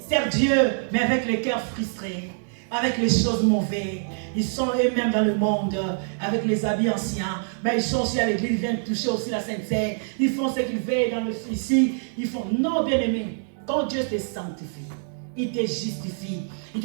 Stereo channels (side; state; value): left; silent; digital silence